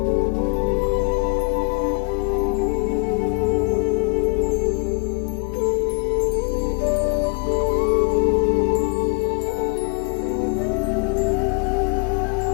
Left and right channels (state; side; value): quieter; right; 30.3 dB